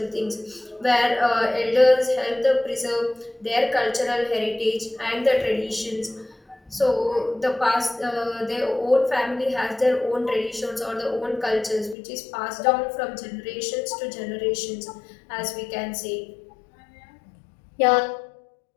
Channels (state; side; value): drops out; right; at 12.0 s